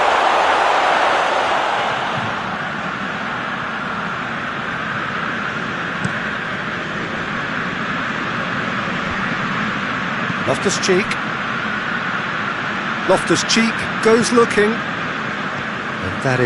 Loftus-Cheek. Loftus-Cheek goes looking. And that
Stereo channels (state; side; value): identical; both; correlation 1.00